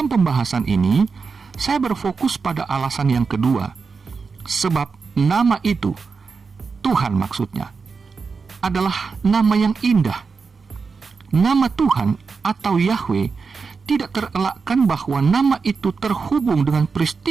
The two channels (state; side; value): quieter; left; 5.0 dB